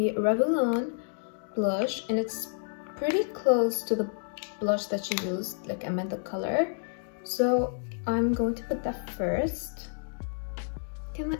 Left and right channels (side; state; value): right; silent; digital silence